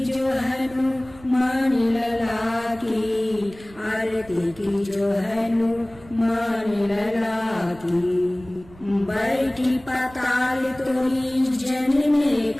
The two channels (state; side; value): noise; right; rumble, 22 dB below the sound